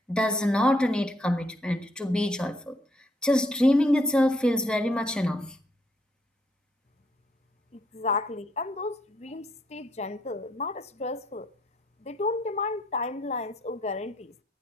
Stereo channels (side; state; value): both; normal; correlation 0.71